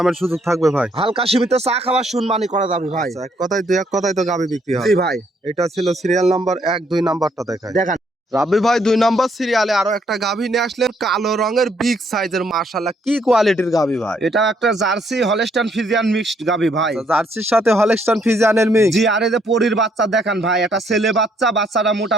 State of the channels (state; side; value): normal; both; correlation 0.69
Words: সুযোগ থাকবে ভাই? হালকা সীমিত চা খাওয়ার শুনবানি করা যাবে ভাই। আচ্ছা, এক কথায় তো গাভী বিক্রি হয়। জি ভাই। এটা ছিল সিরিয়াল নাম্বার 1, 2 নাম্বারটা দেখায়। দেখেন রাব্বি ভাই, 2 নাম্বার সিরিয়ালে আরো একটা গাভী নিয়ে আসলেন, কালো রঙের বিগ সাইজের। মাশাআল্লাহ, কি কোয়ালিটির গাভী ভাই? এটা একটা জার্সি হলস্টাইন ফ্রিজিয়ান মিক্সড গাভী ভাই। জার্সির সাথে হলস্টাইন ফ্রিজিয়ানের মিক্স? জি। আর এই যে পরীর বাচ্চা দেখেন ভাই, এটা ছেলে বাচ্চা। বাচ্চাটা